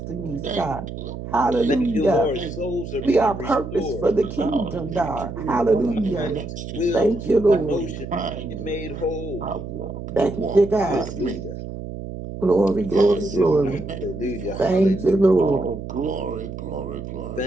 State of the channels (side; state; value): right; noise; hum, 9 dB below the sound